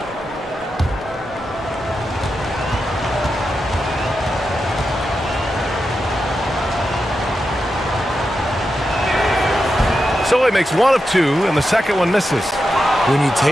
So he makes 1 of 2, and the second one misses. When you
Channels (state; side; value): normal; both; correlation 0.88